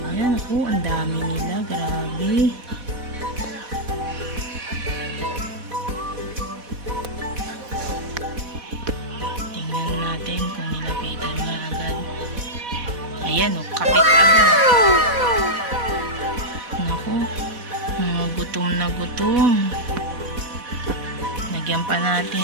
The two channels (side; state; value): left; late; 4.1 ms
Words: Ayan ako, ang dami nila. Grabe. Ayan o, kapit agad. Naku, mga gutom na gutom. Lagyan pa